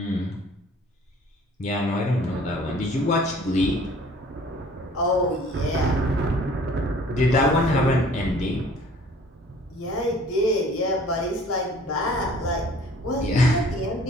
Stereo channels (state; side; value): normal; both; correlation 0.52